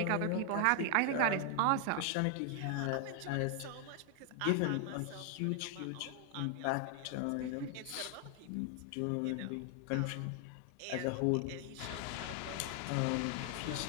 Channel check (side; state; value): both; different; correlation 0.00